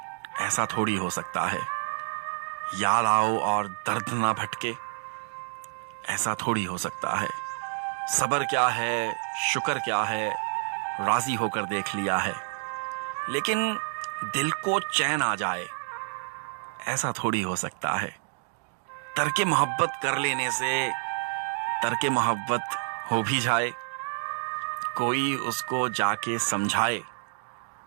ایسا تھوڑی ہو سکتا ہے۔ یاد آؤ اور درد نہ بھٹکے، ایسا تھوڑی ہو سکتا ہے۔ صبر کیا ہے، شکر کیا ہے، راضی ہو کر دیکھ لیا ہے، لیکن دل کو چین آ جائے، ایسا تھوڑی ہو سکتا ہے۔ ترک محبت کر لینے سے ترک محبت ہو بھی جائے، کوئی اس کو جا کے سمجھائے،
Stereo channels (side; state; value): left; silent; digital silence